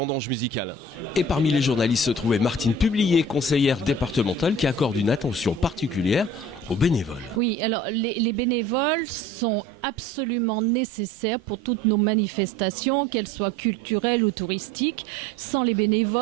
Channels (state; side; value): normal; both; correlation 0.45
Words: Musicales. Et parmi les journalistes se trouvait Martine Publier, conseillère départementale, qui accorde une attention particulière aux bénévoles. Oui, alors les bénévoles sont absolument nécessaires pour toutes nos manifestations, qu'elles soient culturelles ou touristiques. Sans les